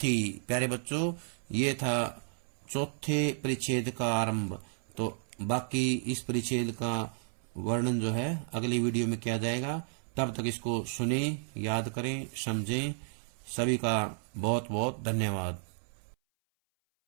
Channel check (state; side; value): silent; left; 56 dB below the other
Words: थी। प्यारे बच्चों, ये था चौथे परिच्छेद का आरंभ। तो बाकी इस परिच्छेद का वर्णन जो है अगली वीडियो में किया जाएगा। तब तक इसको सुने, याद करें, समझें। सभी का बहुत बहुत धन्यवाद।